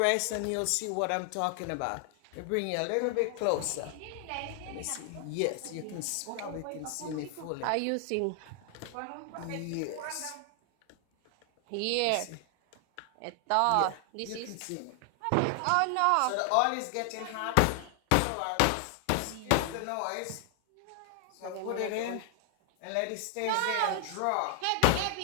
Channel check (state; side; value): different; both; correlation 0.00